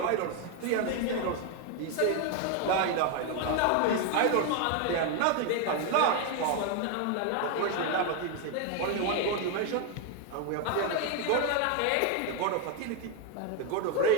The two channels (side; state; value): both; different; correlation 0.01